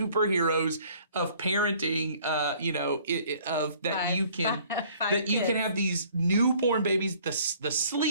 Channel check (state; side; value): inverted; both; correlation -0.56